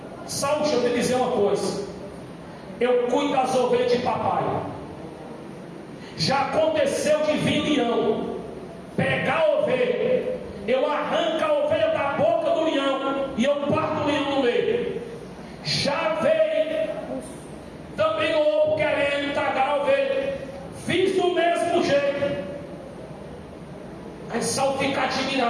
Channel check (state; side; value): identical; both; correlation 1.00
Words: Saul, deixa eu te dizer uma coisa: eu cuido das ovelhas de papai. Já aconteceu de vir leão, pegar a ovelha, eu arranco a ovelha da boca do leão e eu parto o leão no meio. Já veio também o lobo querendo tragar a ovelha, fiz do mesmo jeito. Aí Saul fica